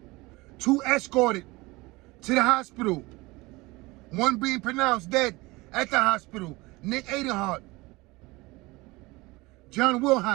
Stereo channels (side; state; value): left; quieter; 22.3 dB